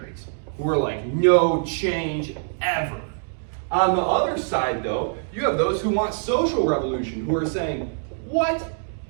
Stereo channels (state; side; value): silent; left; digital silence